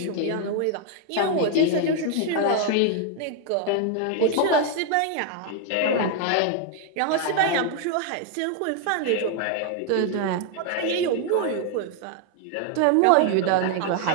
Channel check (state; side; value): different; both; correlation 0.00